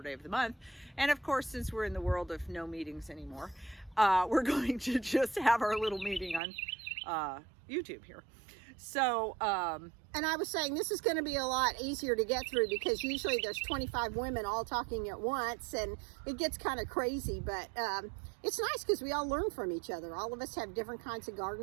of the month. And of course, since we're in the world of no meetings anymore, we're going to just have our little meeting on YouTube here. So, and I was saying this is going to be a lot easier to get through because usually there's 25 women all talking at once and it gets kind of crazy, but it's nice because we all learn from each other. All of us have different kinds of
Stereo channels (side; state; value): left; drops out; at 6.4 s